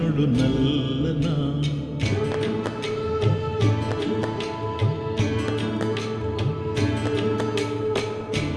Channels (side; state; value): both; identical; correlation 1.00